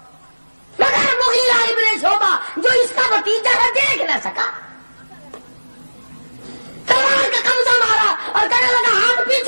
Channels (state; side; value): inverted; both; correlation -1.00